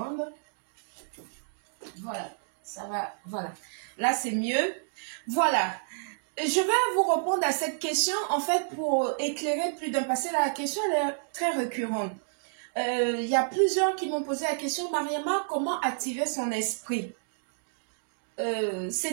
Voilà, ça va, voilà. Là, c'est mieux. Voilà. Je vais vous répondre à cette question, en fait, pour éclairer plus d'un passé. La question, elle est très récurrente. Il y a plusieurs qui m'ont posé la question, Mariama, comment activer son esprit?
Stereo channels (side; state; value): left; silent; digital silence